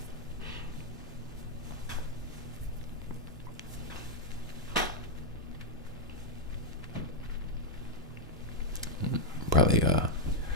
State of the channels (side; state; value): both; normal; correlation 0.00